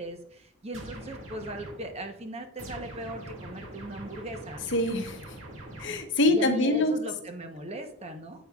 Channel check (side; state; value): both; normal; correlation 0.20